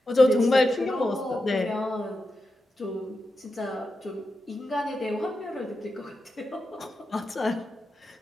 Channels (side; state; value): both; normal; correlation 0.89